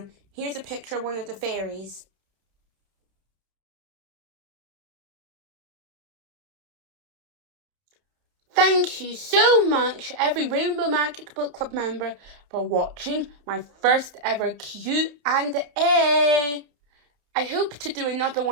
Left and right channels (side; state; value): left; late; 31 ms